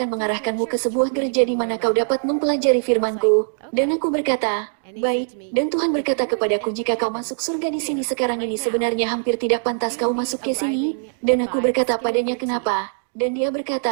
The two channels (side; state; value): left; silent; digital silence